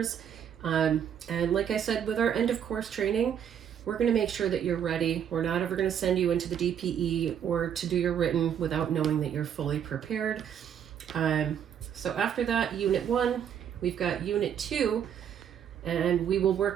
And like I said, with our end of course training, we're going to make sure that you're ready. We're not ever going to send you into the DPE or to do your written without knowing that you're fully prepared. So after that, Unit 1, we've got Unit 2, and we will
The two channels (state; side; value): quieter; left; 8.8 dB